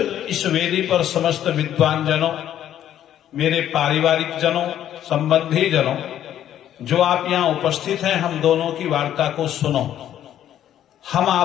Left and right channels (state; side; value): quieter; right; 11.1 dB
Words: इस वेदी पर समस्त विद्वान जनों, मेरे पारिवारिक जनों, संबंधी जनों, जो आप यहां उपस्थित हैं, हम दोनों की वार्ता को सुनो। हम